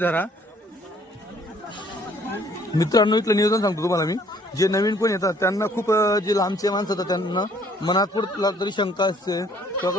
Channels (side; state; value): both; normal; correlation 0.61